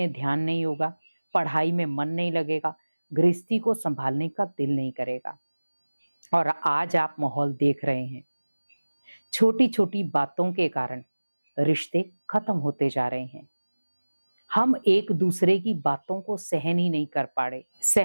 ध्यान नहीं होगा, पढ़ाई में मन नहीं लगेगा, गृहस्थी को संभालने का दिल नहीं करेगा। और आज आप माहौल देख रहे हैं, छोटी छोटी बातों के कारण रिश्ते खत्म होते जा रहे हैं। हम एक दूसरे की बातों को सहन ही नहीं कर पा रहे।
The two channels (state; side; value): inverted; both; correlation -1.00